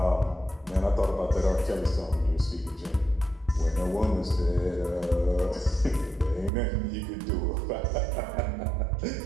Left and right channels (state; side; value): drops out; left; at 6.5 s